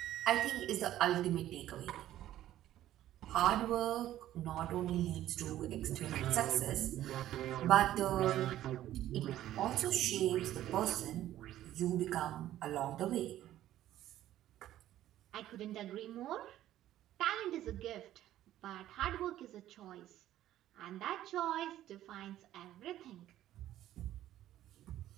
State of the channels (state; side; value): quieter; left; 13.1 dB